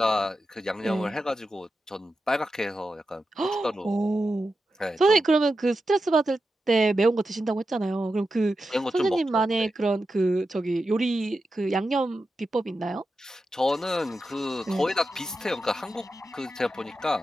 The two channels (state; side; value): normal; both; correlation 0.90